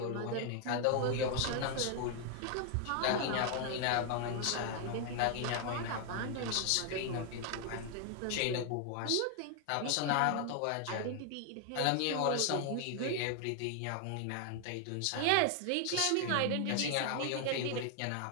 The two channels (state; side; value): different; both; correlation 0.00